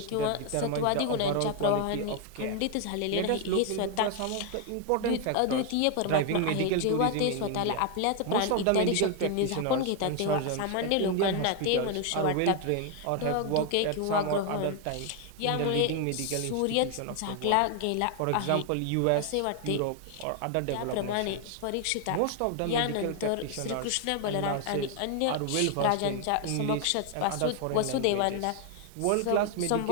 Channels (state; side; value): different; both; correlation 0.00